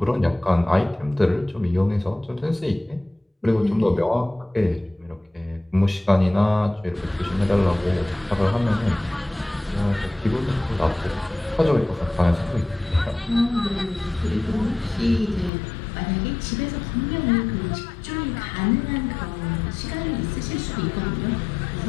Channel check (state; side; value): drops out; right; at 15.5 s